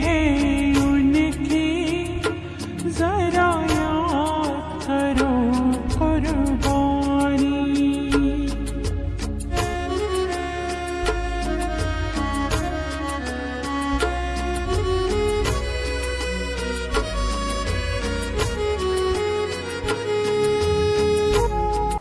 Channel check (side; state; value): both; identical; correlation 1.00